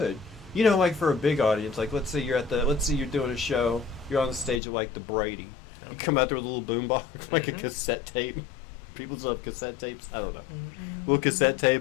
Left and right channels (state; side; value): drops out; right; at 4.6 s